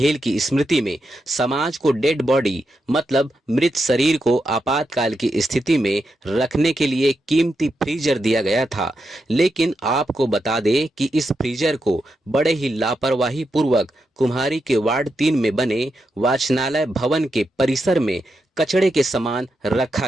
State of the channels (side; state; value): both; normal; correlation 0.85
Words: की स्मृति में समाज को डेड बॉडी मतलब मृत शरीर को आपातकाल की स्थिति में रखने के लिए कीमती फ्रीजर दिया गया था। लेकिन आपको बता दें कि इस फ्रीजर को बड़े ही लापरवाही पूर्वक कुम्हारी के वार्ड 3 में बने वाचनालय भवन के परिसर में कचड़े के समान रखा